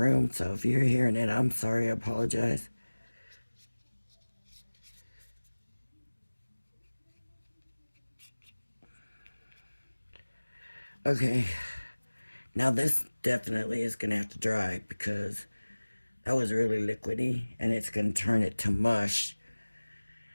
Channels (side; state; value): both; inverted; correlation -1.00